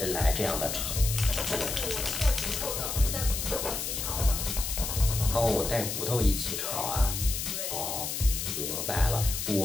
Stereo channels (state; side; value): noise; left; hiss, 3 dB below the sound